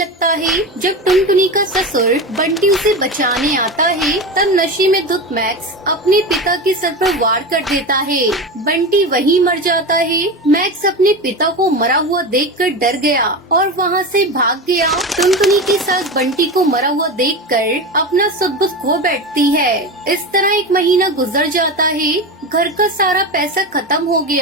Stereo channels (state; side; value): normal; both; correlation 0.23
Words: है। जब टुनटुनी का ससुर बंटी उसे बचाने आता है तब नशे में धुत मैक्स अपने पिता के सर पर वार कर देता है। बंटी वहीं मर जाता है। मैक्स अपने पिता को मरा हुआ देखकर डर गया और वहाँ से भाग गया। टुनटुनी के साथ बंटी को मरा हुआ देखकर अपना सब कुछ खो बैठती है। इस तरह एक महीना गुजर जाता है। घर का सारा पैसा खत्म हो